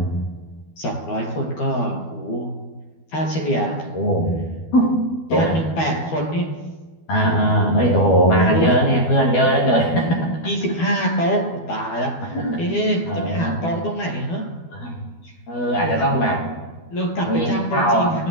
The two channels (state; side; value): late; right; 12 ms